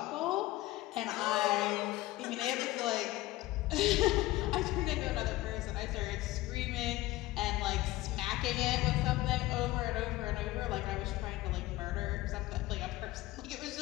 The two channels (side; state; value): right; quieter; 17.7 dB